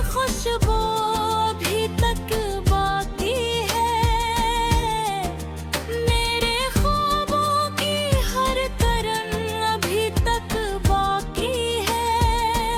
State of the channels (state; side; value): identical; both; correlation 1.00